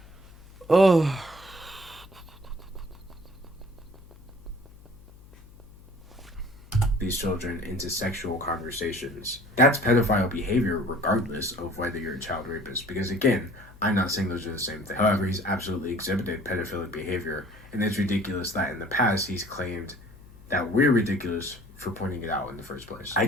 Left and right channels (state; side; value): noise; left; hum, 21 dB below the sound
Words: Oh... these children into sexual conversations. That's pedophile behavior regardless of whether you're a child rapist. Because again, I'm not saying those are the same thing. However, he's absolutely exhibited pedophilic behavior. And it's ridiculous that in the past he's claimed that we're ridiculous for pointing it out in the first place.